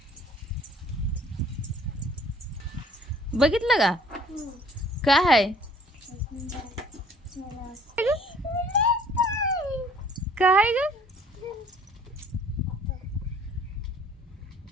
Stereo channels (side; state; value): both; normal; correlation 0.55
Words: बघितलं का? काय आहे? काय ग?